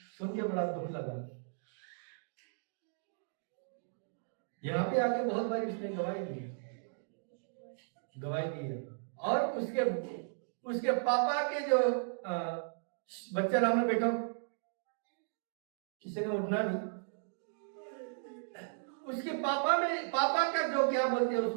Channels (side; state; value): left; silent; digital silence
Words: सुन के बड़ा दुख लगा। यहाँ पे आके बहुत बार उसने गवाही दी है, और उसके उसके पापा के जो बच्चा राम ने बेटा, किसी ने उठना नहीं, उसके पापा का जो क्या बोलते हैं